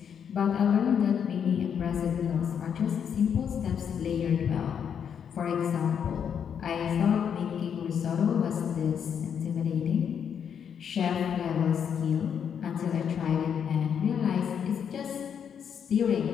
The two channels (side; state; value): right; quieter; 7.8 dB